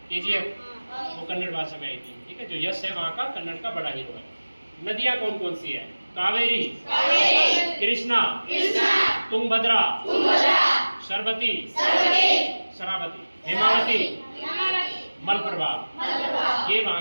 केजीएफ, वो कन्नड़ भाषा में आई थी, ठीक है। जो यश है वहाँ का कन्नड़ का बड़ा हीरो है। नदियाँ कौन कौन सी है? कावेरी, कृष्णा, तुंगभद्रा, शरावती, हेमावती, मलप्रभा, ये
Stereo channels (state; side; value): inverted; both; correlation -1.00